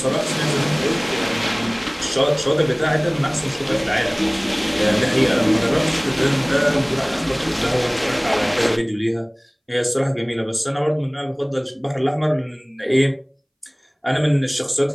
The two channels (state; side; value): identical; both; correlation 1.00